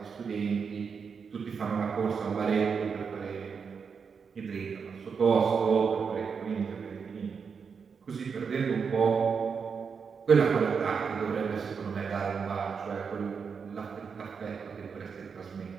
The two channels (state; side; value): quieter; left; 6.0 dB